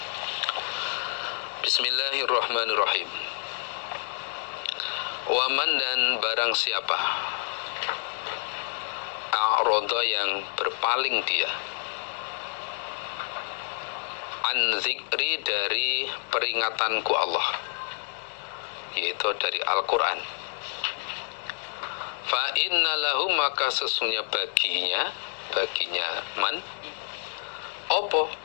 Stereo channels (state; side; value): silent; right; digital silence